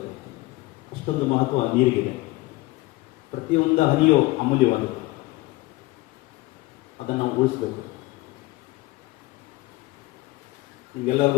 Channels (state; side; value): quieter; right; 20.4 dB